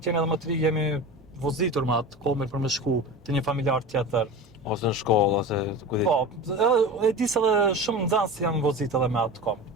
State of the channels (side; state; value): both; normal; correlation 0.31